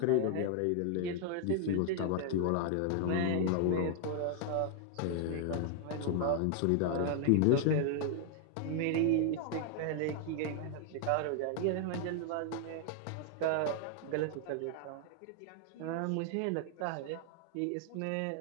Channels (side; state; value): both; different; correlation 0.00